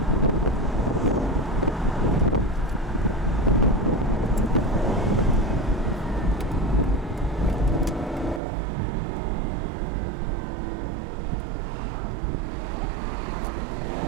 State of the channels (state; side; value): drops out; left; at 8.4 s